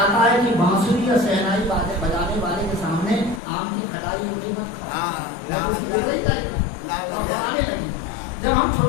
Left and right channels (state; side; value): drops out; right; at 3.4 s